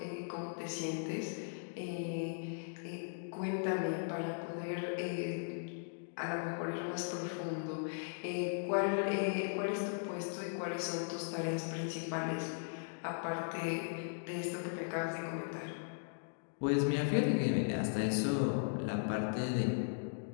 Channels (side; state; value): right; silent; digital silence